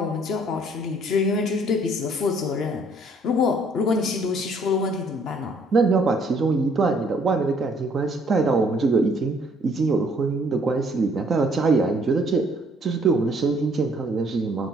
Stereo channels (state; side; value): normal; both; correlation 0.63